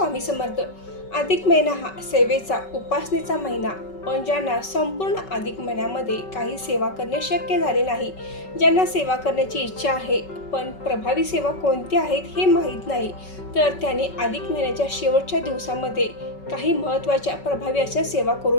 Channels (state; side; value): late; right; 5.3 ms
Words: समर्थ. अधिक महिना हा सेवेचा, उपासनेचा महिना. पण ज्यांना संपूर्ण अधिक महिन्यामध्ये काही सेवा करणे शक्य झाले नाही, ज्यांना सेवा करण्याची इच्छा आहे पण प्रभावी सेवा कोणत्या आहेत हे माहीत नाही, तर त्यांनी अधिक महिन्याच्या शेवटच्या दिवसामध्ये काही महत्त्वाच्या प्रभावी अशा सेवा